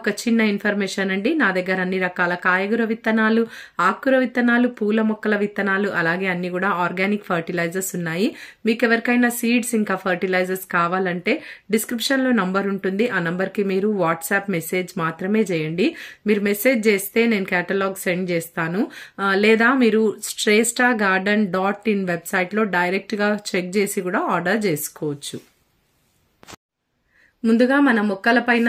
చిన్న ఇన్ఫర్మేషన్ అండి. నా దగ్గర అన్ని రకాల కాయగూర విత్తనాలు, ఆకుకూర విత్తనాలు, పూల మొక్కల విత్తనాలు, అలాగే అన్ని కూడా ఆర్గానిక్ ఫర్టిలైజర్స్ ఉన్నాయి. మీకు ఎవరికైనా సీడ్స్ ఇంకా ఫర్టిలైజర్స్ కావాలంటే డిస్క్రిప్షన్లో నంబర్ ఉంటుంది. ఆ నంబర్కి మీరు వాట్సాప్ మెసేజ్ మాత్రమే చేయండి. మీరు మెసేజ్ చేస్తే నేను కేటలాగ్ సెండ్ చేస్తాను. లేదా మీరు shresthagarden.in వెబ్సైట్లో డైరెక్ట్గా చెక్ చేసి కూడా ఆర్డర్ చేసుకోవచ్చు. ముందుగా మన మొక్కల పైన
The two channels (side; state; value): both; identical; correlation 1.00